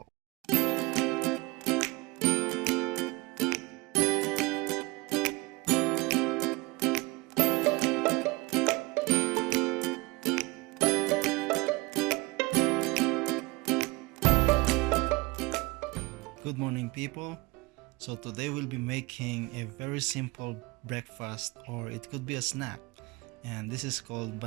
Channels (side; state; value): left; quieter; 24.2 dB